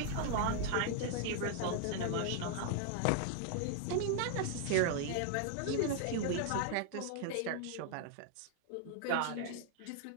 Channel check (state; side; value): different; both; correlation 0.00